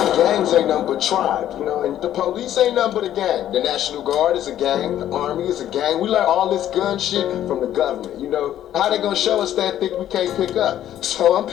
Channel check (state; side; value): quieter; right; 11.7 dB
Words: Gangs ain't nothing but tribes, you know, and the police ain't nothing but a gang. The National Guard is a gang, the Army is a gang. We learn all this gun shit from the government, you know? How they gonna show us that thing we can't pick up? So I'm